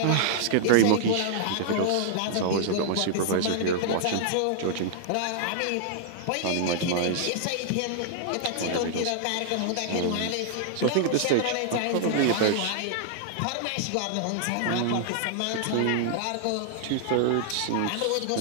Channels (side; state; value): both; different; correlation -0.01